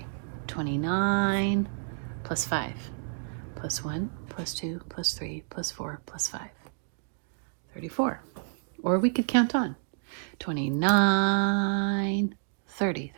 29 plus 5, plus 1, plus 2, plus 3, plus 4, plus 5. 34. Or we could count on. 29, 30,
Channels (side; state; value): left; silent; digital silence